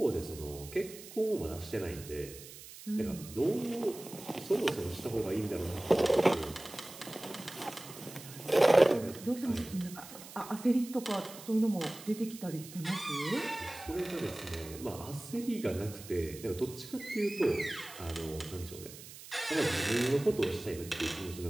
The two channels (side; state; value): right; noise; hiss, 15 dB below the sound